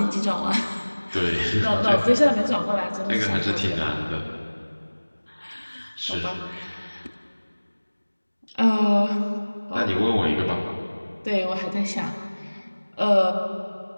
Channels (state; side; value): inverted; both; correlation -1.00